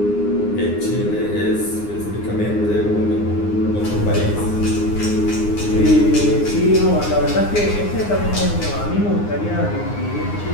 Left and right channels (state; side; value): late; right; 9.7 ms